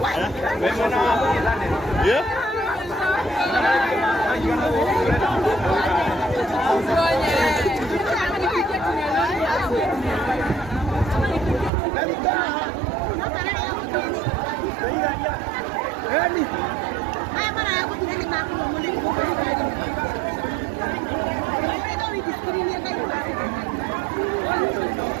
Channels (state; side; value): drops out; left; at 11.7 s